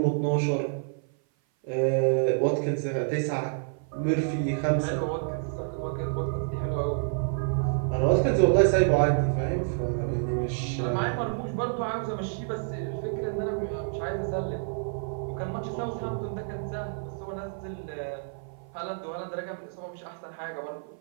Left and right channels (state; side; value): silent; left; 56 dB below the other